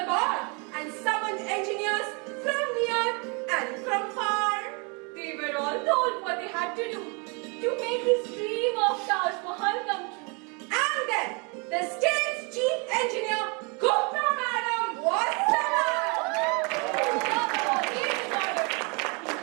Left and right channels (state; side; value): quieter; left; 32.7 dB